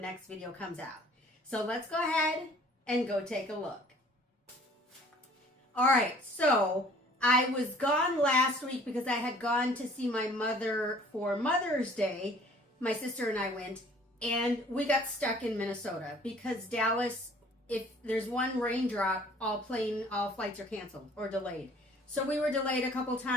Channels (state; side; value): normal; both; correlation 0.53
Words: video comes out. So let's go ahead and go take a look. All right, so I was gone last week because I had gone to see my mother for Mother's Day. My sister and I went, and we got stuck in Minnesota because Dallas, if there's one raindrop, all flights are canceled or delayed. So we were delayed a couple